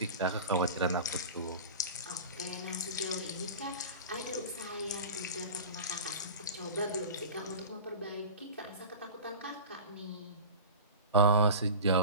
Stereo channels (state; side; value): inverted; both; correlation -0.33